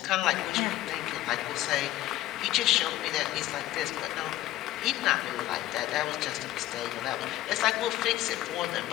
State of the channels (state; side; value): quieter; right; 14.9 dB